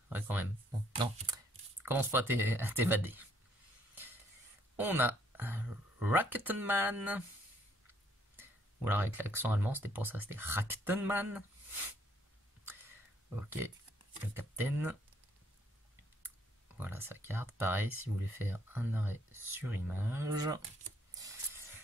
ouais quand même. Bon, non, commence pas à t'évader. On a Raktenman. Ou alors avec l'accent allemand, c'était pour ça, c'était Raktenman. Ok, le capitaine. Voilà sa carte. Pareil, si vous voulez faire un arrêt sur image.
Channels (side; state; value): both; normal; correlation 0.67